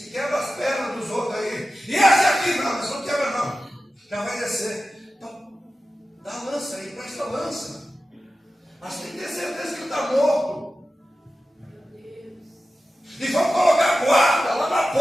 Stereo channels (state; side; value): normal; both; correlation 0.94